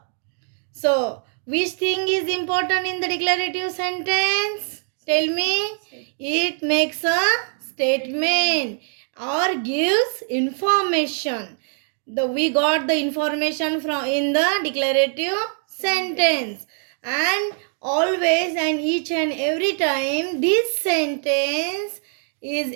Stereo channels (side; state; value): left; silent; 56 dB below the other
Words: So, which thing is important in the declarative sentence? Tell me. It makes a statement or gives information. We got the information from in the declarative sentence, and always and each and every time this sentence is